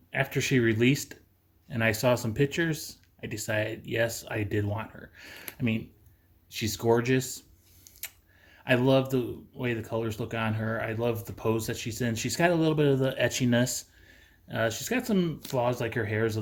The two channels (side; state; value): both; identical; correlation 1.00